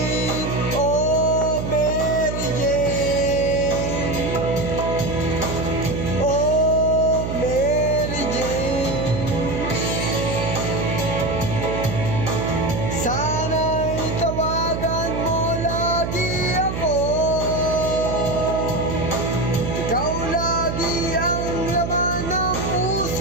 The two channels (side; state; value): right; noise; hum, 4 dB below the sound